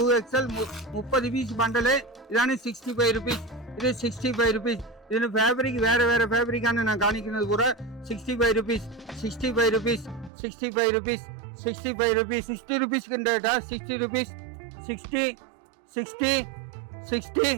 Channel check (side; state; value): left; drops out; at 10.3 s